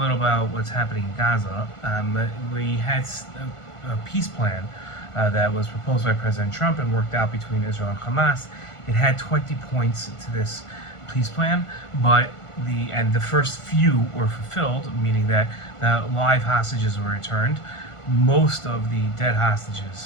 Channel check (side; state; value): right; late; 1.5 ms